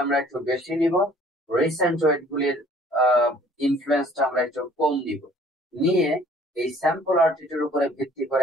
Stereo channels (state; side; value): normal; both; correlation 0.56